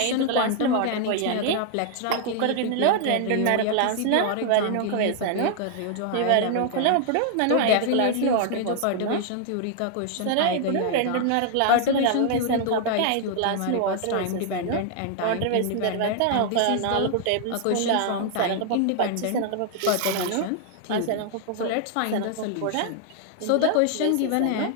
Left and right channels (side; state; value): both; different; correlation 0.00